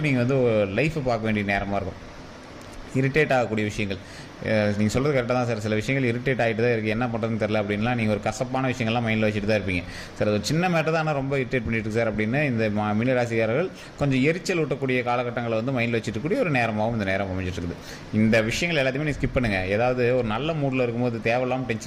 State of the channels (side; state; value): both; identical; correlation 1.00